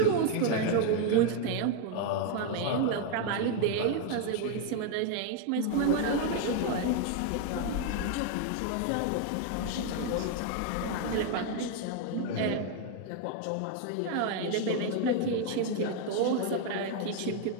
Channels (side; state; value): both; different; correlation 0.01